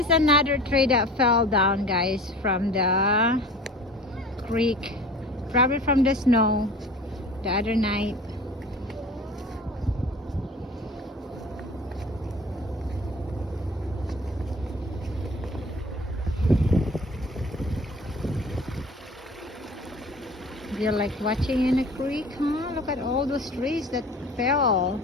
another tree that fell down, guys, from the creek. Probably from the snow the other night. Do you like watching in a creek, huh? Look at all those trees that fell.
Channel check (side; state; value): both; normal; correlation 0.41